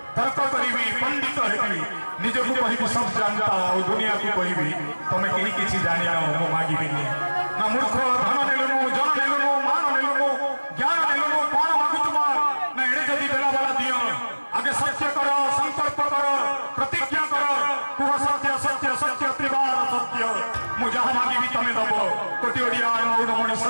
तर्क करिबी पंडित हेबी निजको कहिबी सब जानता और दुनिया को कहिबी तमे केही किछि जानि न मो मागिबिनी ना मूर्ख धन नेलनु जन नेलनु मान नेलनु ज्ञान नेलनु कोन मागु तुमा ना एडे जदी देला वाला दियो आगे सत्य करो संकल्प करो प्रतिज्ञा करो कुह सत्य सत्य सत्य त्रिवार सत्य मु जहां मागिबी तमे दबो कोटि ओडिया मौडमणि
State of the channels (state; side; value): inverted; both; correlation -1.00